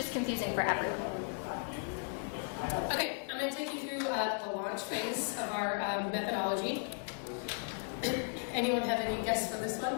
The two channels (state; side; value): silent; right; 54 dB below the other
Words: confusing for everyone. Okay, I'm going to take you through the launch phase of our methodology. Anyone have any guess for this one?